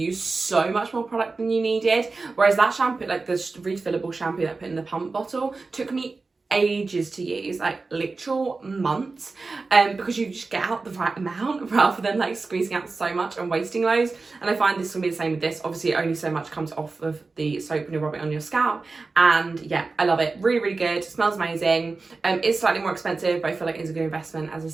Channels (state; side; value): quieter; left; 3.9 dB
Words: so much more product than you needed, whereas that shampoo, like the refillable shampoo that I put in the pump bottle, took me ages to use, like literal months, because you just get out the right amount rather than like squeezing out so much and wasting loads. And I find this will be the same with this. Obviously only so much comes off of the soap when you rub it on your scalp, and yeah, I love it. Really, really good. Smells amazing. It's slightly more expensive, but I feel like it's a good investment, as I